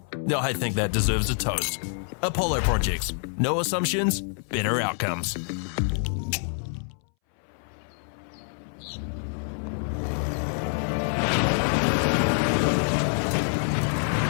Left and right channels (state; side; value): silent; right; 61 dB below the other